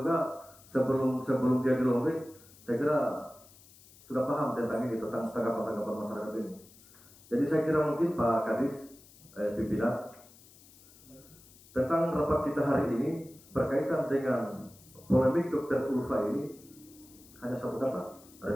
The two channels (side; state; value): left; noise; hiss, 24 dB below the sound